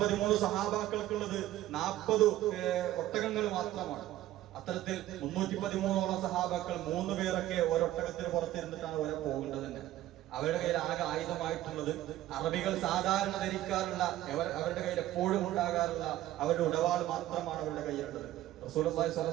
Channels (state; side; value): quieter; left; 14.3 dB